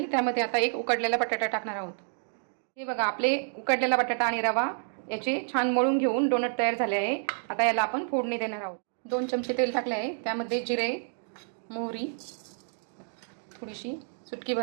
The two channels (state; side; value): silent; left; digital silence